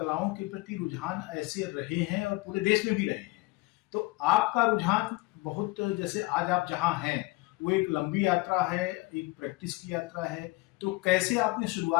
के प्रति रुझान ऐसे रहे हैं और पूरे देश में भी रहे हैं। तो आपका रुझान बहुत, जैसे आज आप जहाँ हैं वो एक लंबी यात्रा है, एक प्रैक्टिस की यात्रा है, तो कैसे आपने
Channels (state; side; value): quieter; right; 23.1 dB